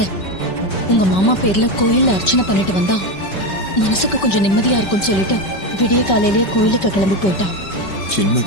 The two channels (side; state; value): right; late; 5.2 ms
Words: உங்க மாமா பேர்ல கோயில்ல அர்ச்சனை பண்ணிட்டு வந்தா மனசுக்கு கொஞ்சம் நிம்மதியா இருக்கும்னு சொல்லிட்டு விடிய காலையிலேயே கோயிலுக்கு கிளம்பி போயிட்டா.